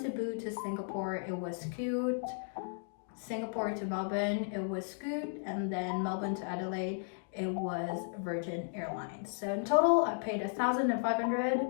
to Singapore, it was Scoot. Singapore to Melbourne, it was Scoot, and then Melbourne to Adelaide, it was Virgin Airlines. So in total, I paid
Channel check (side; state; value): right; silent; digital silence